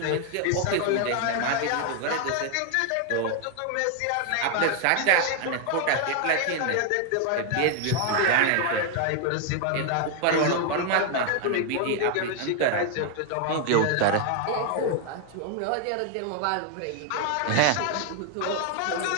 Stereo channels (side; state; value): both; different; correlation 0.01